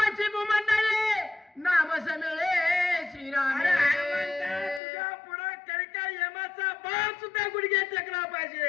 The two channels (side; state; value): right; drops out; at 4.8 s